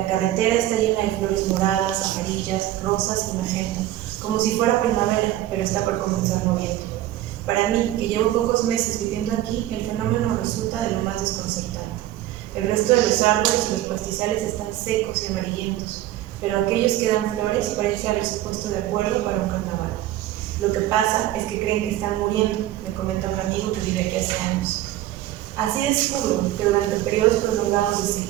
carretera está llena de flores moradas, amarillas, rosas y magenta, como si fuera primavera, pero está por comenzar noviembre. Para mí, que llevo pocos meses viviendo aquí, el fenómeno resulta de lo más desconcertante. El resto de los árboles y los pastizales están secos y amarillentos, pero aquellos que dan flores parece haberse puesto de acuerdo para un carnaval. Lo que pasa es que creen que están muriendo, me comenta un amigo que vive aquí hace años. Así descubro que durante periodos prolongados de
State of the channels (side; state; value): left; quieter; 14.1 dB